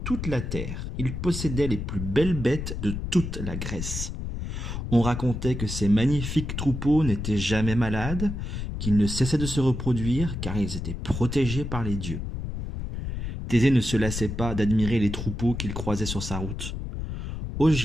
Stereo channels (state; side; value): noise; left; rumble, 5 dB below the sound